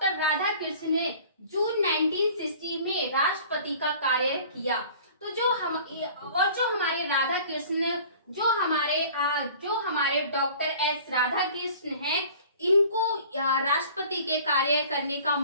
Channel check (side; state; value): both; inverted; correlation -0.47